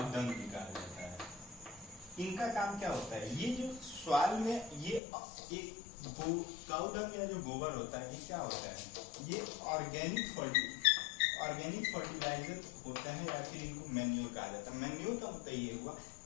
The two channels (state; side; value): drops out; right; at 5.0 s